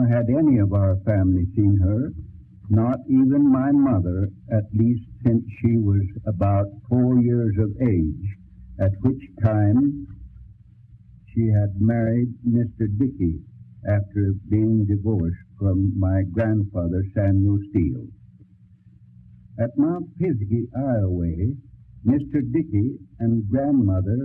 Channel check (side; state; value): both; identical; correlation 1.00